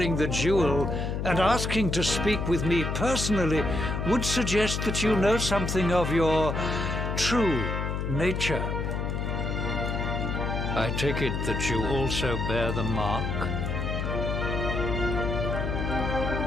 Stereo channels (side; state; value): left; noise; hum, 2 dB below the sound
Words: the jewel and asking to speak with me personally would suggest that you know something of your true nature. I take it that you also bear the mark?